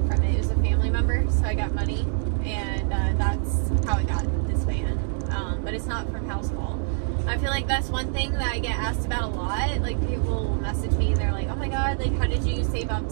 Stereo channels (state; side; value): silent; left; digital silence